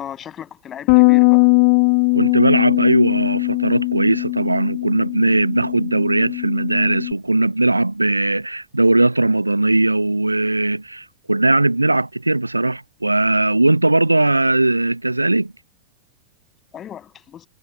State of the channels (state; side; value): inverted; both; correlation -0.69